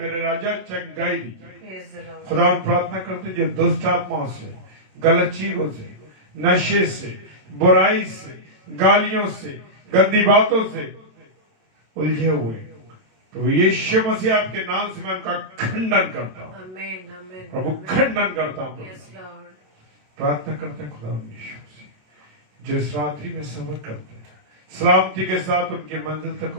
राजा चंगाई दी। खुदावन प्रार्थना करते हैं जो दुष्ट आत्माओं से, गलत चीजों से, नशे से, बुराई से, गालियों से, गंदी बातों से उलझे हुए तो यीशु मसीह आपके नाम से मैं उनका खंडन करता हूँ प्रभु, खंडन करता हूँ। प्रार्थना करते हैं खुदा यीशु मसीह जो इस रात्रि में सफर करते हैं, सलामती के साथ उनकी मंजिल तक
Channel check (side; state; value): left; late; 27 ms